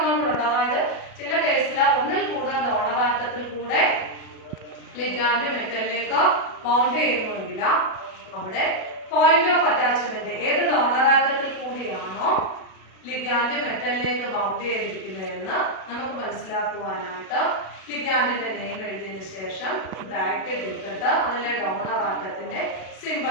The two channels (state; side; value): late; right; 37 ms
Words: കൂടെ ഉണ്ട്. അതായത് ചില കേസിൽ ഒന്നിൽ കൂടുതൽ ഡോണർ ആറ്റത്തിൽ കൂടെ ലിഗാൻഡ് മെറ്റലിലേക്ക് ബൗണ്ട് ചെയ്യുന്നുവെങ്കിൽ അവിടെ പോയിന്റ് ഓഫ് അറ്റാച്ച്മെന്റ് ഏത് ഡോണർ ആറ്റത്തിൽ കൂടിയാണോ ലിഗാൻഡ് മെറ്റലിലേക്ക് ബൗണ്ട് ചെയ്തിരിക്കുന്നതെന്ന് നമുക്ക് മനസ്സിലാക്കുവാനായിട്ട് ലിഗാൻഡിന്റെ നെയിം എഴുതിയതിനു ശേഷം ബ്രാക്കറ്റ് ഇട്ടിട്ട് അതിലെ ഡോണർ ആറ്റത്തിന്റെ